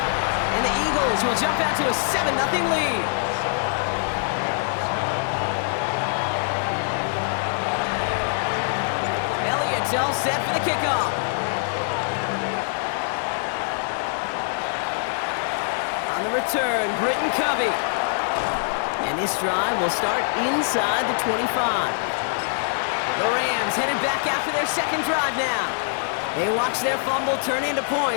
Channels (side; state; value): right; silent; digital silence